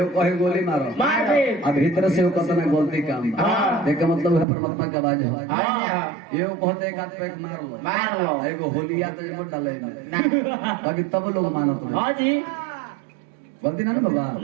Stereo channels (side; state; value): left; drops out; at 4.5 s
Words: कहे गोली मारो अब भीतर से वो कतना गलती काम एक मतलब है परमात्मा की आवाज है एओ कहते एक हाथ पे मार लो एगो होलिया तो मत डाले में बाकी तब लोग मानत नहीं हां जी गलती ना बाबा